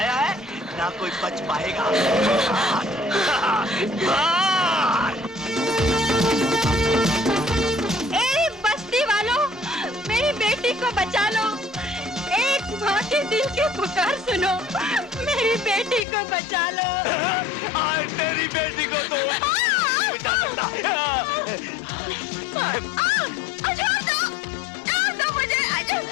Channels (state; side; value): drops out; right; at 16.1 s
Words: है, ना कोई बच पाएगा। भाग। ए बस्ती वालों, मेरी बेटी को बचा लो। एक माँ के दिल की पुकार सुनो, मेरी बेटी को बचा लो। आज तेरी बेटी को तो बचा सकता। छोड़ दो मुझे।